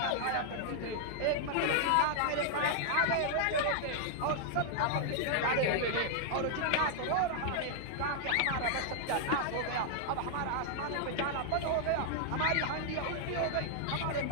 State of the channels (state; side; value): different; both; correlation -0.01